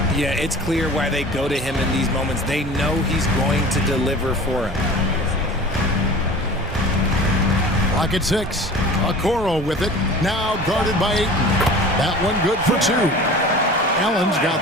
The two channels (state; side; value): normal; both; correlation 0.40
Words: Yeah, it's clear why they go to him in these moments. They know he's going to deliver for him. Lock at 6. Okoro with it. Now guarded by Ayton. That one good for 2. Allen's